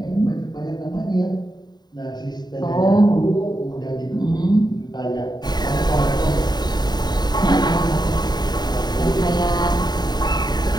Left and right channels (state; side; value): late; right; 0.20 ms